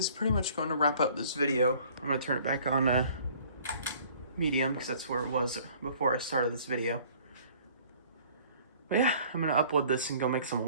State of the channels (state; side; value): inverted; both; correlation -0.54